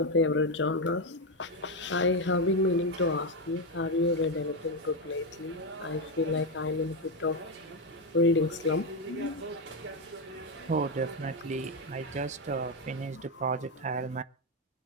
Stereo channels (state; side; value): normal; both; correlation 0.07